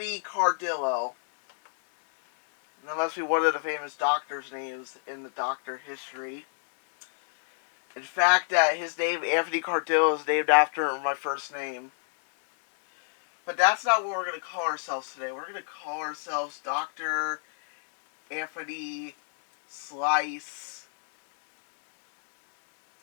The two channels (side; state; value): right; silent; 59 dB below the other